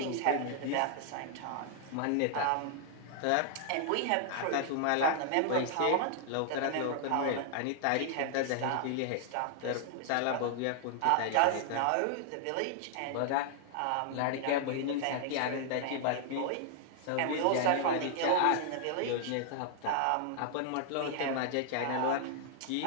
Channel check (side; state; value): both; different; correlation -0.01